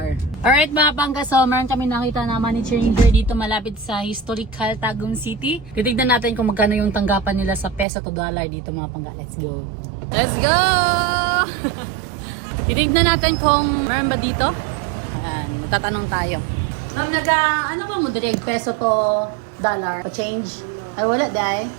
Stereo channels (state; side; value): drops out; left; at 7.9 s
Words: Alright mga pangga, so meron kami nakita na money changer dito malapit sa historical Tagum City. Titignan natin kung magkano yung tanggapan nila sa peso to dollar dito mga pangga. Let's go! Let's go! Titignan natin kung meron ba dito. Ayan, magtatanong tayo. Ma'am, ano ba mo direct peso to dollar? Pa-change? Ay wala dahi.